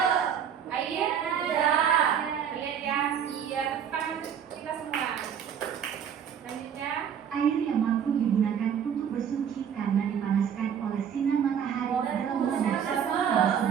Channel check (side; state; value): left; quieter; 8.2 dB